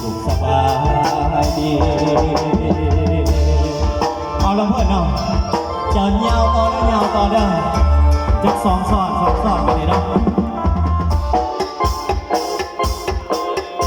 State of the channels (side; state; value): both; identical; correlation 1.00